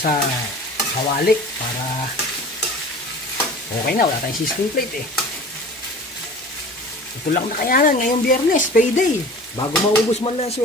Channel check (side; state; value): both; normal; correlation 0.41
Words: kawali para okay na. Wala tayong sizzling plate eh. Ito lang nakayanan ngayong Biyernes, payday. Bago maubos man lang